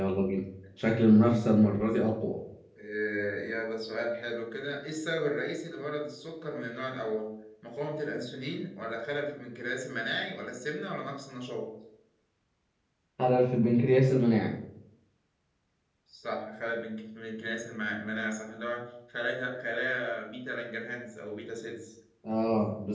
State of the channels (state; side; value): identical; both; correlation 1.00